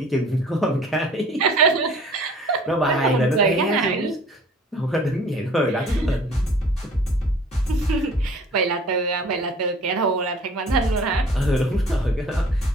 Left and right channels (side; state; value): both; normal; correlation 0.50